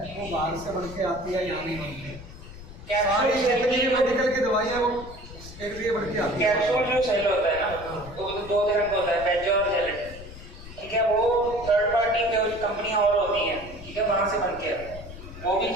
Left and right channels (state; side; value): noise; left; rumble, 14 dB below the sound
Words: वो बाहर से बन के आती है, यहाँ नहीं बनती है। सारी कैप्सूल जितनी मेडिकल की दवाइयाँ वो एक लिए बढ़ के आती है। कैप्सूल जो सेल होता है ना, वो 2 तरह का होता है, बेज और जेलेटिन, ठीक है, वो थर्ड पार्टी कंपनियां और होती हैं, ठीक है, वहां से बन के आता है, वो भी